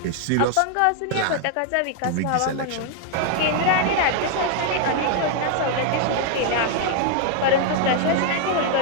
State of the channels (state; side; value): different; both; correlation 0.00